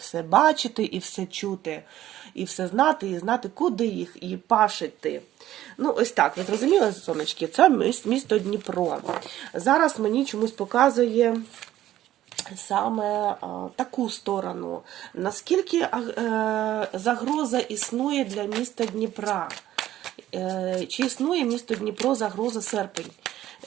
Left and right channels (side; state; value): left; quieter; 13.4 dB